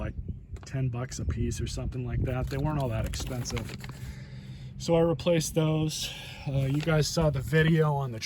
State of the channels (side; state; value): both; identical; correlation 1.00